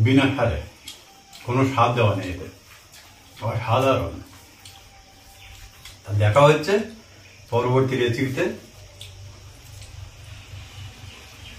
বিনা সারে, কোনো স্বাদ দেওয়া নেই এতে, অসাধারণ। দেখা হচ্ছে পরবর্তী রেসিপিতে।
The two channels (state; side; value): identical; both; correlation 1.00